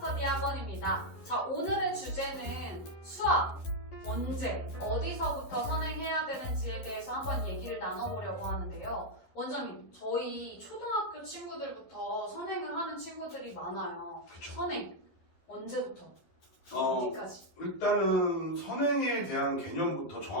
학원입니다. 자, 오늘의 주제는 수학, 언제, 어디서부터 선행해야 되는지에 대해서 한번 얘기를 나눠보려고 하는데요. 원장님, 저희 초등학교 친구들부터 선행을 하는 친구들이 많아요. 그쵸. 선행, 언제부터? 어디까지? 일단은 선행에 대한 개념부터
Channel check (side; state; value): right; late; 11 ms